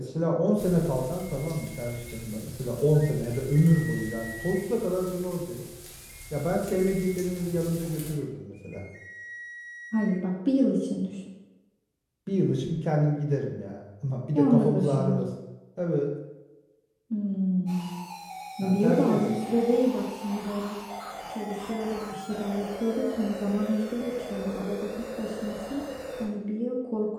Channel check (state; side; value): identical; both; correlation 1.00